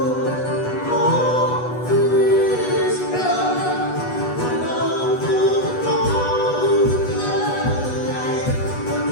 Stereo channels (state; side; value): late; right; 8.2 ms